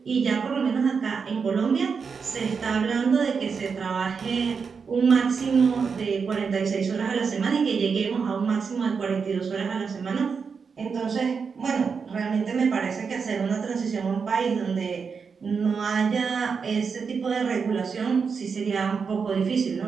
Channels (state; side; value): quieter; left; 5.7 dB